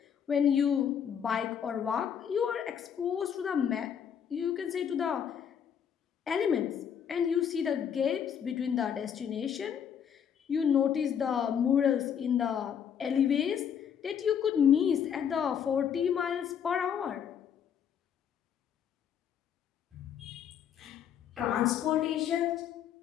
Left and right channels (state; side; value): quieter; right; 8.3 dB